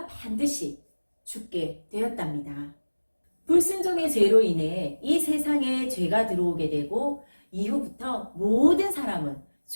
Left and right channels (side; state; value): both; inverted; correlation -1.00